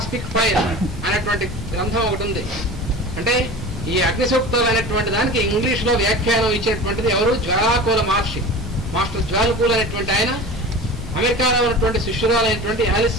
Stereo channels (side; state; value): both; normal; correlation 0.34